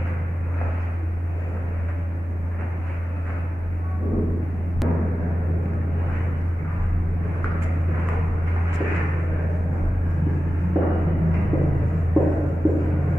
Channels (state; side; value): normal; both; correlation 0.94